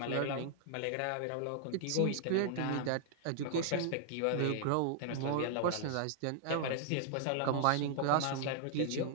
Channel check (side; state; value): both; different; correlation -0.01